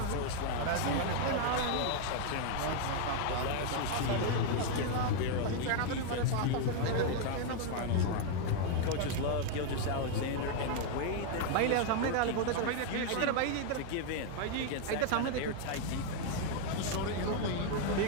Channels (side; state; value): both; different; correlation 0.00